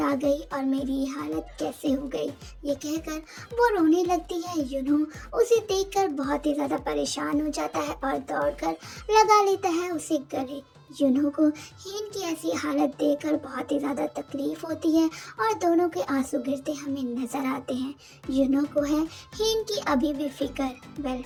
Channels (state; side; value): identical; both; correlation 1.00